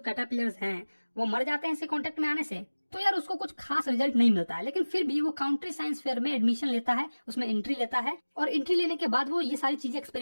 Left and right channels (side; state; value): both; inverted; correlation -1.00